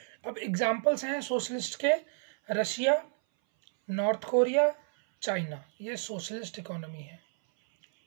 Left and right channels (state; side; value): silent; left; 57 dB below the other